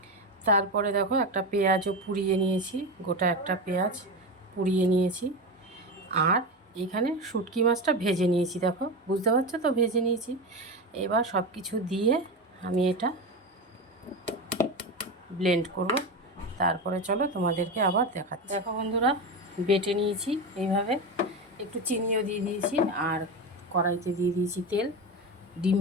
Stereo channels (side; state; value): both; normal; correlation 0.20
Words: তারপরে দেখো একটা পেঁয়াজও পুড়িয়ে নিয়েছি, গোটা একটা পেঁয়াজ পুড়িয়ে নিয়েছি। আর এখানে শুটকি মাছটা ভেজে নিয়েছি, দেখো বুঝতে পারছো তো ভেজে নিয়েছি। এবার সব কিছু দিয়ে আমি এটা ব্লেন্ড করব। তারপরে চলো তোমাদেরকে আবার দেখাচ্ছি। দেখো বন্ধুরা, বেটে নিয়েছি এইভাবে। একটু চিনিও দিয়ে দিয়েছি আর কড়াইতে দিয়ে দিয়েছি তেল। ডিম